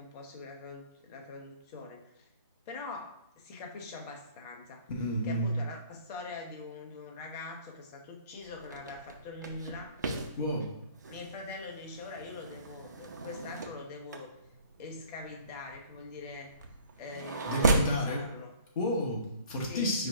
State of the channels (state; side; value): inverted; both; correlation -0.52